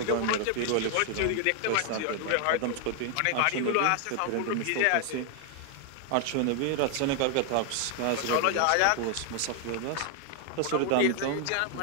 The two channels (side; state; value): both; different; correlation 0.00